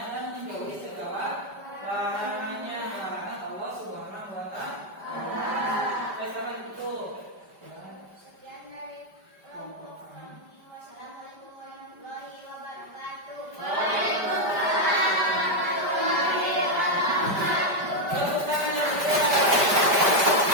dan menjauhi segala larangannya, larangan Allah Subhanahu wa Ta'ala. Sampai itu. Sekian dari kelompok kami. Wassalamualaikum warahmatullahi wabarakatuh. Tepuk tangan yang barusan dari kelompok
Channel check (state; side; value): late; left; 5.1 ms